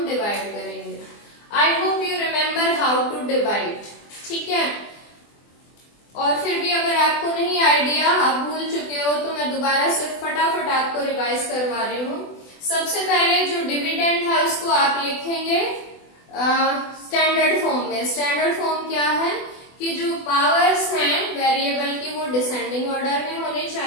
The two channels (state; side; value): late; right; 24 ms